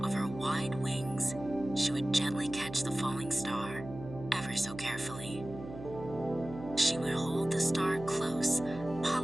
of her wide wings, she would gently catch the falling star, ever so carefully. She would hold the star close,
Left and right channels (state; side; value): noise; right; hum, 12 dB below the sound